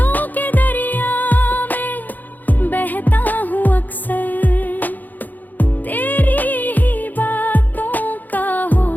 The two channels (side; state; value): right; late; 0.084 ms